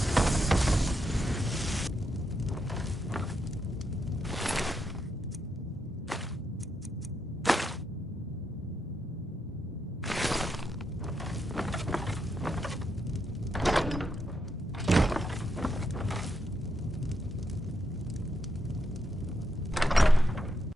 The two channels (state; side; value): normal; both; correlation 0.81